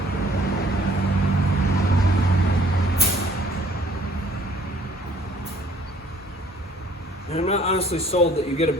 And I'm not honestly sold that you get a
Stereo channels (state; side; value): normal; both; correlation 0.57